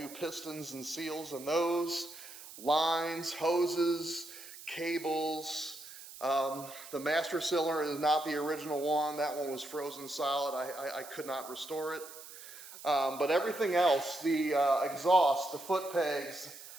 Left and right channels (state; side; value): noise; right; hiss, 15 dB below the sound